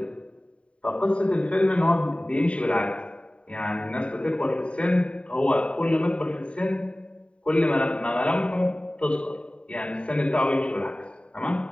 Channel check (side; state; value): right; late; 0.058 ms